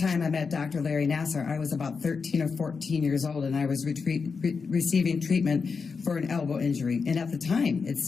time I met Dr. Larry Nassar, I was about 13 or 14 years old, and I was receiving treatment for an elbow injury. And at the time, it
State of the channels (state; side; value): quieter; right; 5.2 dB